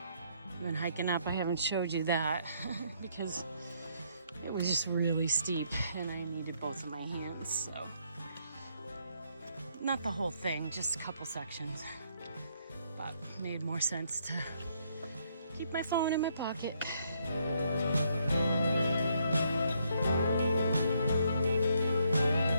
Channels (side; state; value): both; inverted; correlation -0.71